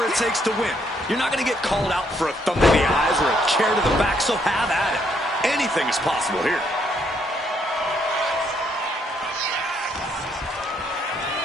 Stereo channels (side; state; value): both; normal; correlation 0.71